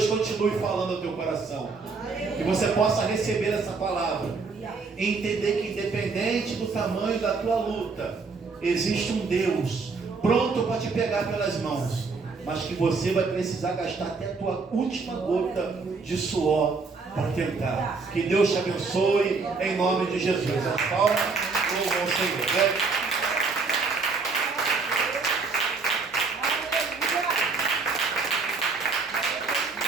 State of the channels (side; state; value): left; quieter; 4.4 dB